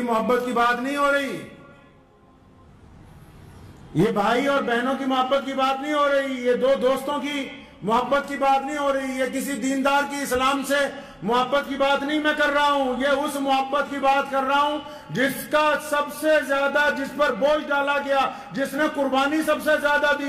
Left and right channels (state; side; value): identical; both; correlation 1.00